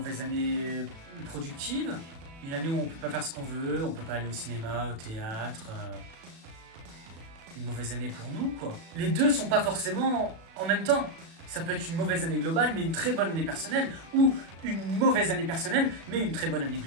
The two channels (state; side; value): late; left; 36 ms